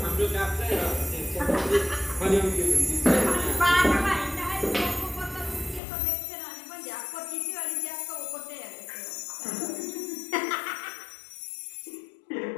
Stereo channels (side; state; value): right; drops out; at 5.8 s